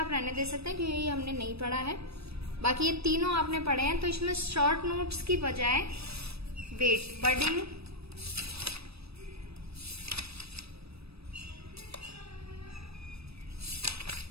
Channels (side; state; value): left; late; 0.78 ms